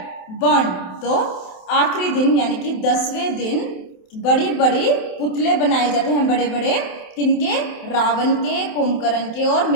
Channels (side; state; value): right; late; 27 ms